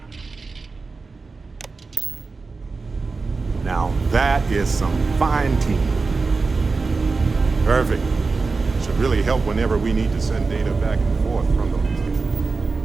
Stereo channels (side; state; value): left; quieter; 4.1 dB